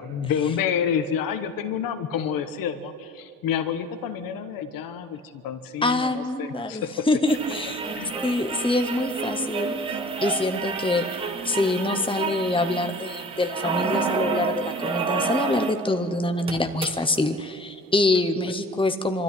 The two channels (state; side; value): normal; both; correlation 0.44